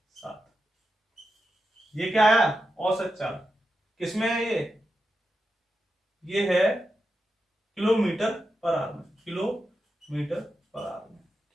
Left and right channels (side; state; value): both; normal; correlation 0.89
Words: ये क्या आया? औसत चाल। किसमें है ये है किलोमीटर पर आवर में, किलोमीटर पर आवर में।